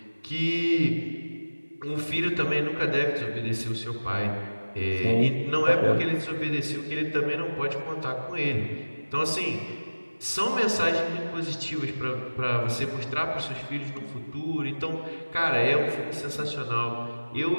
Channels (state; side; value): inverted; both; correlation -1.00